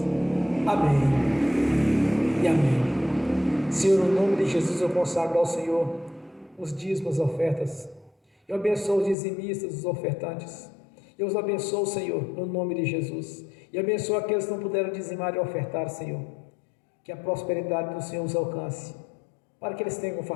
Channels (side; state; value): right; drops out; at 9.2 s